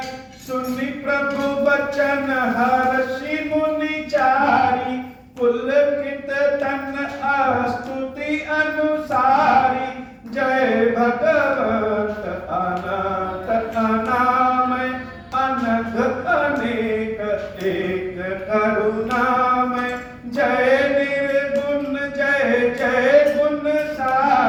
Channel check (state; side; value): identical; both; correlation 1.00